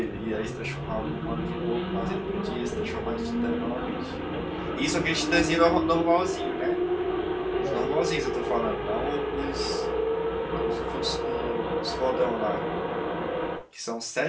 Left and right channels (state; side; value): identical; both; correlation 1.00